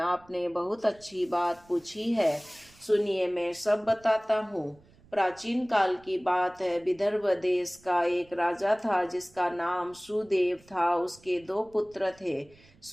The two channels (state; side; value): noise; right; rumble, 27 dB below the sound